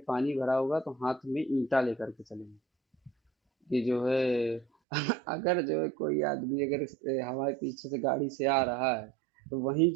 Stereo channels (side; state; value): left; drops out; at 4.7 s